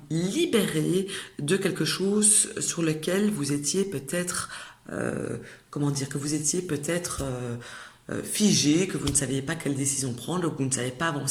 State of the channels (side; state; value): both; identical; correlation 1.00